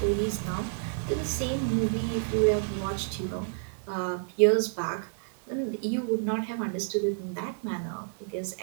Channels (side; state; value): left; silent; digital silence